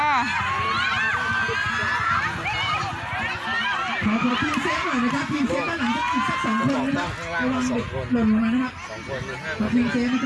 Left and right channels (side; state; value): both; identical; correlation 1.00